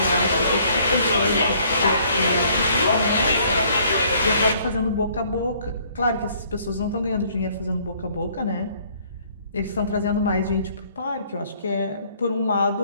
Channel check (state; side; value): inverted; both; correlation -0.61